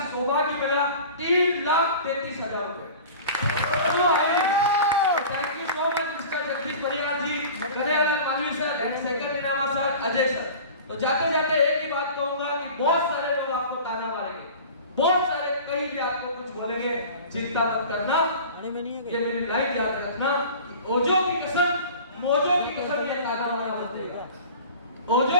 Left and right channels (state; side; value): inverted; both; correlation -0.39